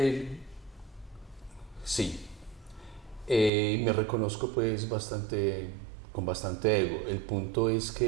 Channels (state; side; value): drops out; left; at 3.5 s